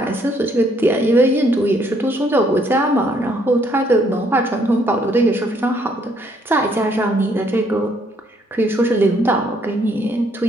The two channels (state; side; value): normal; both; correlation 0.68